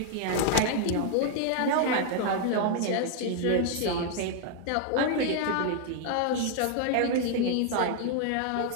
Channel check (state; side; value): different; both; correlation 0.00